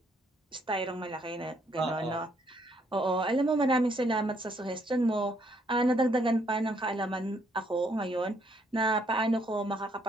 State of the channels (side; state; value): both; normal; correlation 0.70